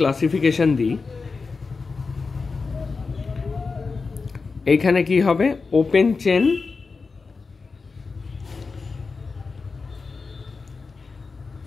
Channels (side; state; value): right; quieter; 4.4 dB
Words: দিই, এইখানে কি হবে, ওপেন চেন